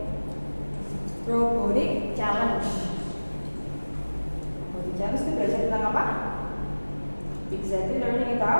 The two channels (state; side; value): inverted; both; correlation -1.00